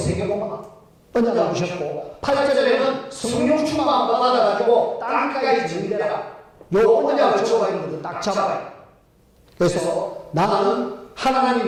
언약을 주셨고 8절에는 성령 충만함을 받아가지고 땅까지 진행되라. 요 언약을 적어가는 것을 딱 잡아요. 그래서 나는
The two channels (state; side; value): identical; both; correlation 1.00